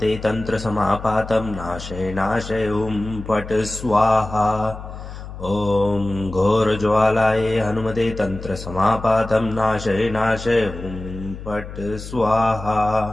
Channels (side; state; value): left; noise; hum, 11 dB below the sound